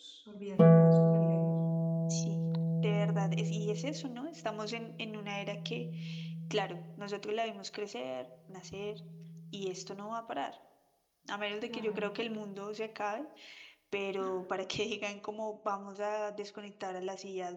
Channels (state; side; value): identical; both; correlation 1.00